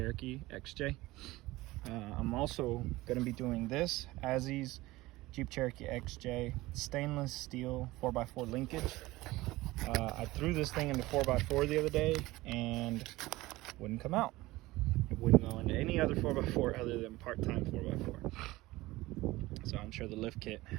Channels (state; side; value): quieter; left; 19.1 dB